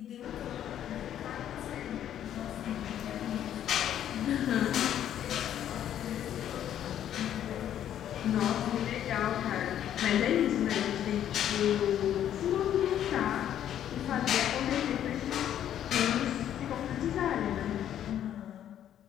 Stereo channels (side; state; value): right; quieter; 10.6 dB